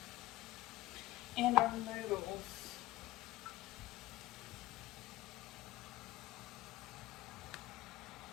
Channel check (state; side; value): quieter; right; 16.6 dB